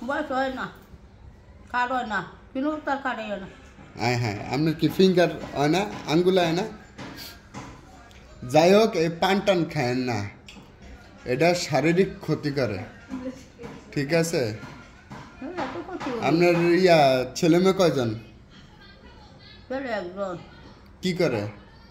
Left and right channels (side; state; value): both; identical; correlation 1.00